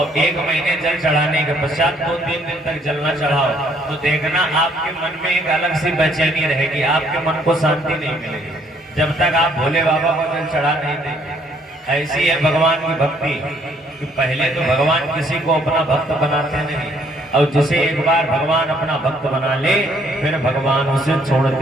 1 महीने जल चढ़ाने के पश्चात 2-3 दिन तक जल न चढ़ाओ तो देखना आपके मन में एक अलग सी बेचैनी रहेगी, आपके मन को शांति नहीं मिलेगी जब तक आप भोले बाबा को जल चढ़ा नहीं देंगे। ऐसी है भगवान की भक्ति कि पहले तो भगवान किसी को अपना भक्त बनाते नहीं, और जिसे एक बार भगवान अपना भक्त बना ले फिर भगवान उसे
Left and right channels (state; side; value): normal; both; correlation 0.65